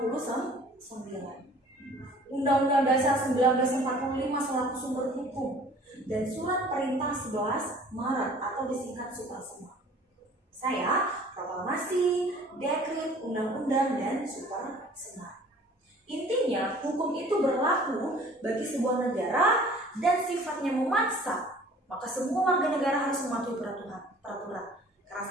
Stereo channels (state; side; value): normal; both; correlation 0.50